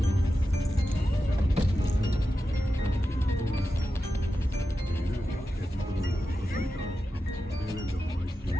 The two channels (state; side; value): normal; both; correlation 0.91